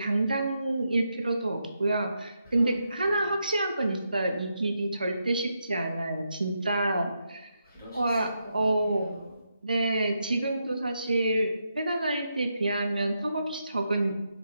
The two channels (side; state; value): both; inverted; correlation -0.83